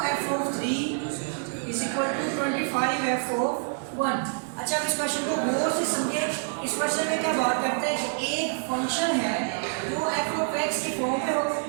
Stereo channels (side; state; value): left; silent; 60 dB below the other